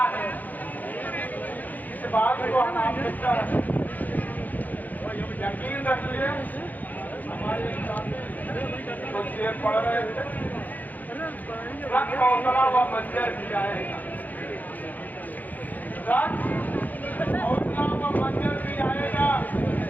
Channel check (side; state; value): right; late; 0.082 ms